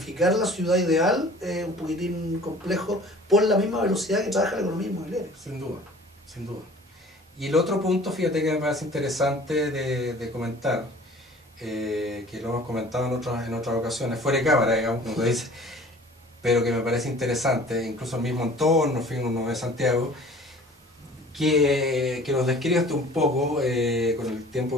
la ciudad ideal es un poquitín complejo por la misma velocidad que trabaja la economía inmobiliaria. Sin duda, sin duda. Y el otro punto, fíjate que me parece interesante de comentar, que lo hemos comentado en otras ocasiones, fuera de cámara, digamos, como tú dices, pero que me parece interesante, incluso el mismo entorno, uno de Santiago, que nos describas un poco, con el tiempo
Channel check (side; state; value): both; normal; correlation 0.47